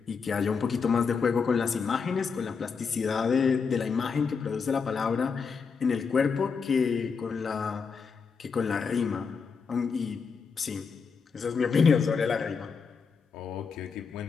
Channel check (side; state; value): right; quieter; 5.6 dB